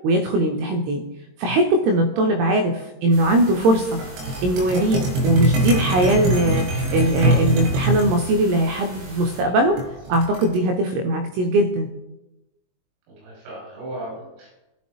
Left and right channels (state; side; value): late; left; 22 ms